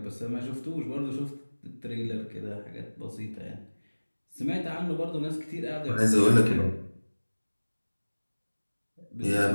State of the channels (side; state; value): both; inverted; correlation -1.00